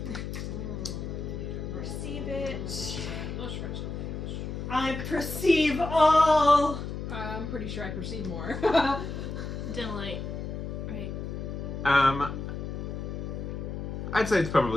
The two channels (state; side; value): noise; left; hum, 5 dB below the sound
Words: Perceive it. Let's try something. I perceive all. I'm pretty sure I perceive more. Dim light. Right. I'd say it's